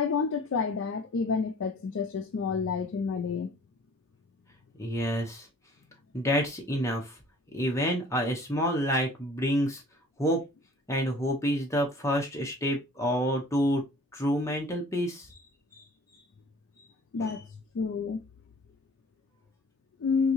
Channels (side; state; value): both; normal; correlation 0.49